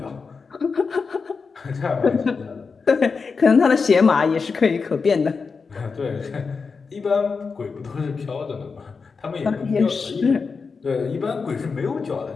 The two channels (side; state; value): right; quieter; 5.0 dB